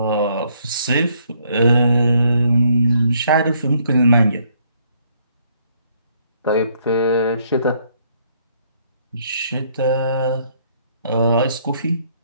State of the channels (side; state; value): both; inverted; correlation -0.67